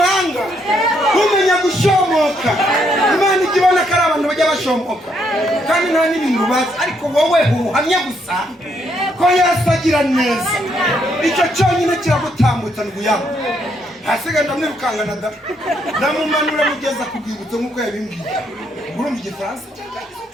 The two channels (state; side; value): normal; both; correlation 0.74